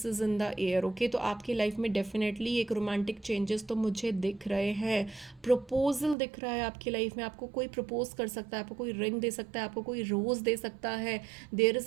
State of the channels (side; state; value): left; drops out; at 6.2 s